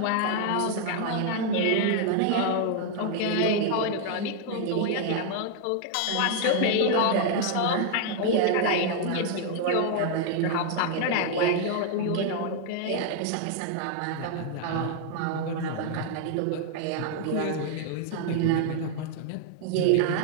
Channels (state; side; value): different; both; correlation 0.00